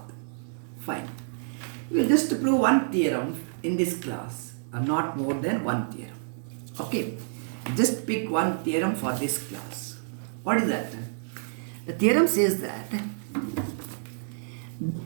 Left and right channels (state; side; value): silent; left; digital silence